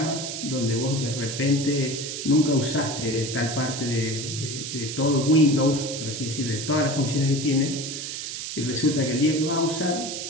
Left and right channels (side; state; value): right; noise; hiss, 6 dB below the sound